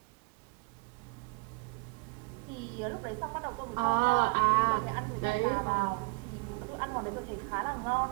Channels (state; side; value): quieter; left; 27.4 dB